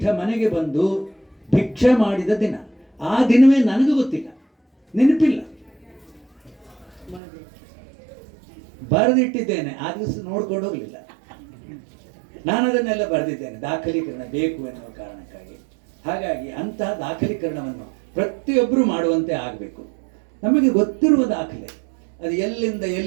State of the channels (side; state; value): left; drops out; at 7.2 s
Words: ಮನೆಗೆ ಬಂದು ಭಿಕ್ಷೆ ಮಾಡಿದ ದಿನ. ಆ ದಿನವೇ ನನಗೂ ಗೊತ್ತಿಲ್ಲ, ನೆನಪಿಲ್ಲ. ಬರೆದಿಟ್ಟಿದ್ದೇನೆ, ಆ ದಿವಸ ನೋಡ್ಕೊಂಡು ಹೋಗಲಿಲ್ಲ. ನಾನು ಅದನ್ನೆಲ್ಲ ಬರೆದಿದ್ದೇನೆ, ದಾಖಲೀಕರಣ ಬೇಕು ಎನ್ನುವ ಕಾರಣಕ್ಕಾಗಿ. ಹಾಗಾಗಿ ಅಂತಹ ದಾಖಲೀಕರಣವನ್ನು ಪ್ರತಿಯೊಬ್ಬರು ಮಾಡುವಂತೆ ಆಗಬೇಕು. ನಮಗೆ ಗೊತ್ತಿರುವ ದಾಖಲೆ ಅದು ಎಲ್ಲಿಂದ